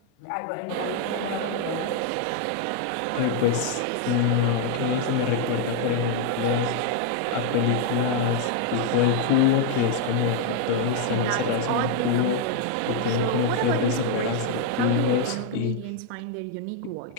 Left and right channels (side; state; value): both; different; correlation 0.00